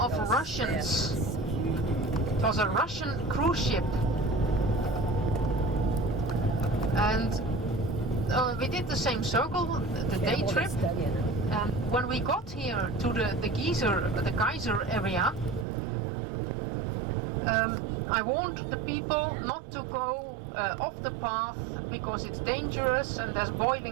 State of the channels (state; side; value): drops out; left; at 15.7 s